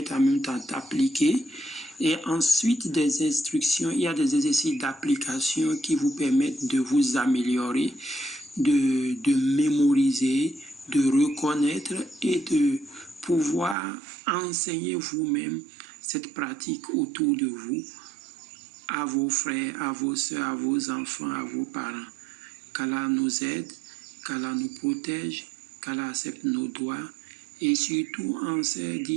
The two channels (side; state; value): left; drops out; at 13.8 s